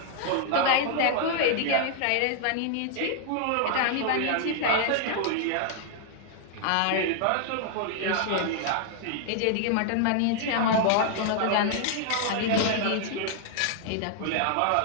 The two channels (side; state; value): both; different; correlation 0.00